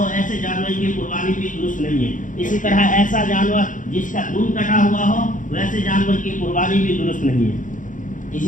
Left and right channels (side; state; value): right; late; 0.38 ms